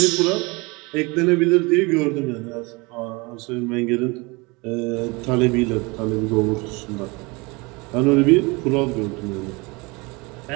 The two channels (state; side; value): quieter; left; 26.4 dB